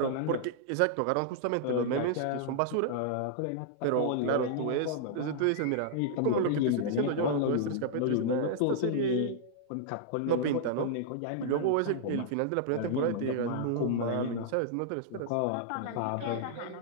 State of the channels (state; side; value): different; both; correlation -0.01